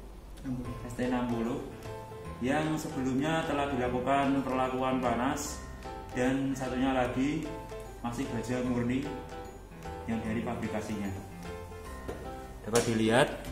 yang sebelumnya telah dilakukan perlakuan panas, dan satunya lagi masih baja murni yang dari pabrikasinya. Dapat dilihat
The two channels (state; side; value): identical; both; correlation 1.00